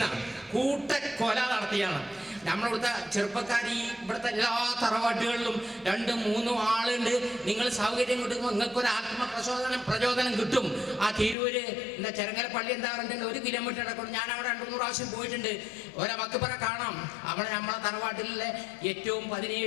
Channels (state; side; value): drops out; right; at 11.4 s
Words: കൂട്ടക്കൊല നടത്തിയാണ്. നമ്മളിവിടുത്തെ ചെറുപ്പക്കാർ ഈ ഇവിടുത്തെ എല്ലാ തറവാട്ടുകളിലും 2, 3 ആളുണ്ട്. നിങ്ങൾ സൗകര്യം കിട്ടുമ്പോൾ നിങ്ങൾക്കൊരു പ്രചോദനം കിട്ടും. ആ തിരൂര് ചെരങ്ങര പള്ളി എന്താ പറഞ്ഞിട്ടുണ്ട്, 1 കിലോമീറ്റർ ഇടക്കൊണ്ട് ഞാൻ അവിടെ 2-3 പ്രാവശ്യം പോയിട്ടുണ്ട്. മക്ബറ കാണാം. അവിടെ നമ്മളെ തറവാട്ടിലെ ഏറ്റവും